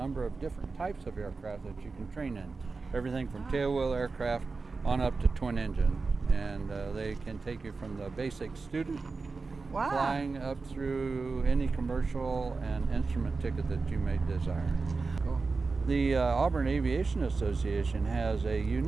of different types of aircraft that you can train in. Everything from tailwheel aircraft on up to twin engine. And they can take you from the basic student flying up through any commercial and instrument ticket that you may desire. The Auburn Aviation Association has a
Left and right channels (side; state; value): left; quieter; 4.2 dB